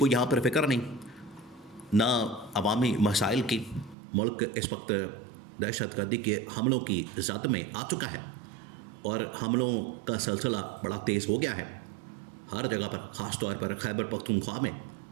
یہاں پر فکر نہیں، نہ عوامی مسائل کی۔ ملک اس وقت دہشت گردی کے حملوں کی زد میں آ چکا ہے، اور حملوں کا سلسلہ بڑا تیز ہو گیا ہے ہر جگہ پر، خاص طور پر خیبر پختونخوا میں،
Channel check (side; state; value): left; drops out; at 4.0 s